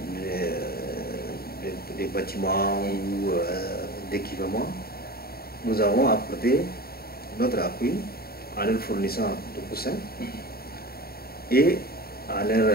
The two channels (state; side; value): late; right; 0.45 ms